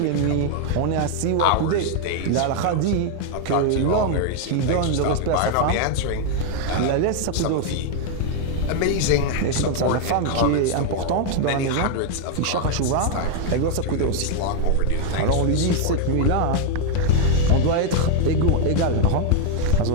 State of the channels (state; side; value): different; both; correlation 0.00